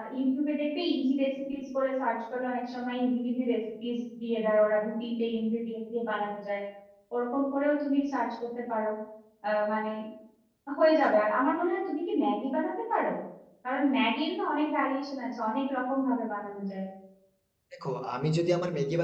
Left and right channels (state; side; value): identical; both; correlation 1.00